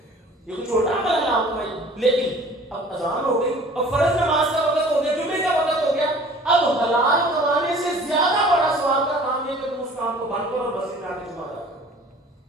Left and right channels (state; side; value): normal; both; correlation 0.48